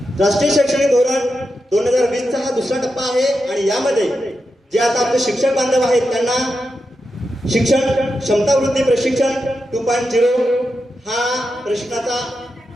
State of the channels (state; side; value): normal; both; correlation 0.88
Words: राष्ट्रीय शैक्षणिक धोरण 2020चा हा दुसरा टप्पा आहे आणि यामध्ये जे आता आपले शिक्षक बांधव आहेत त्यांना शिक्षण क्षमतावृद्धी प्रशिक्षण 2.0 हा प्रशिक्षणाचा